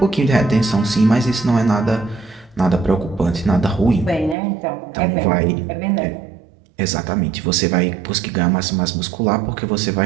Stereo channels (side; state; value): left; drops out; at 4.4 s